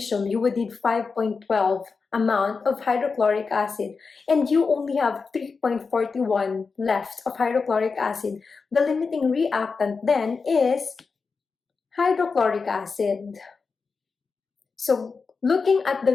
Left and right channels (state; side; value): quieter; right; 4.8 dB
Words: you would need 5.12 amount of hydrochloric acid, and you only have 3.41 left of hydrochloric acid, the limiting reactant then is hydrochloric acid. So looking at the